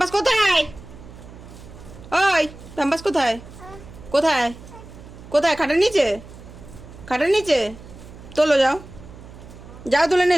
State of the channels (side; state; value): right; noise; hum, 17 dB below the sound